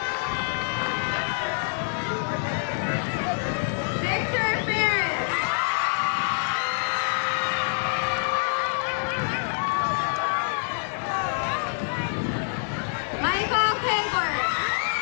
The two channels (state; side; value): silent; right; digital silence